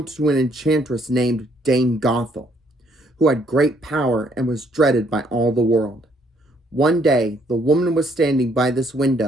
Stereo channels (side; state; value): both; normal; correlation 0.68